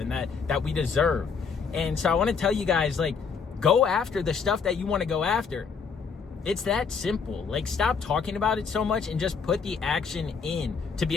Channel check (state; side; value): quieter; right; 5.7 dB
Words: and that we deserve? And so I want to tell you guys, like, go after the stuff that you want to go after. It's that simple. Like, stop talking about it so much and just put the action in to